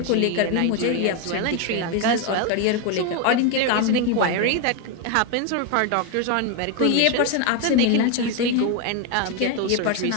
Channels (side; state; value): both; different; correlation 0.01